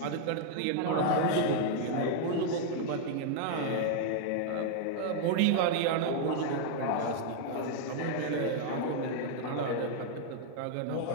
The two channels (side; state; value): both; different; correlation 0.00